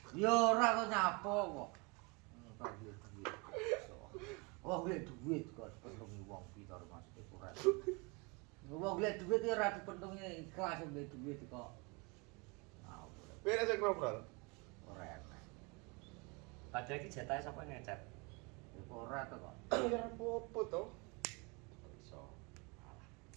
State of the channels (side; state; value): left; quieter; 29.3 dB